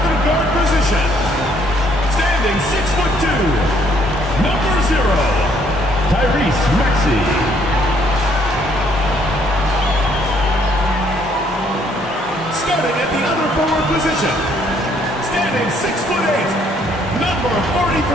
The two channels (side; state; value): both; normal; correlation 0.66